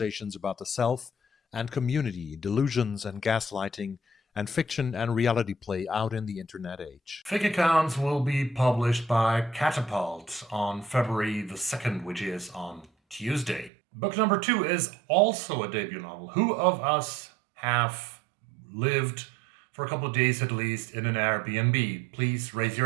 about the self and community, delusions and gaslighting, and fiction and reality play out in the internet age. Fake Accounts will be published by CATAPULT on February the 2nd, which is on Tuesday. Book number 2 is also a debut novel. Who of us have lived for a couple of days at least in an Airbnb? Please raise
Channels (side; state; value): left; drops out; at 13.7 s